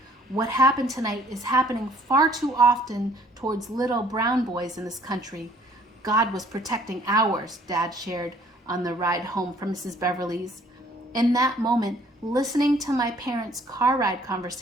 What happened tonight is happening far too often towards little brown boys in this country. God was protecting ours, Dad shared on the ride home from Mrs. Beverly's. In that moment, listening to my parents' car ride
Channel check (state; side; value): normal; both; correlation 0.59